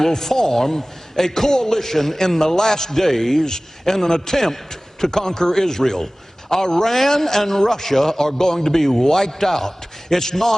will form a coalition in the last days in an attempt to conquer Israel. Iran and Russia are going to be wiped out. It's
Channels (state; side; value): normal; both; correlation 0.98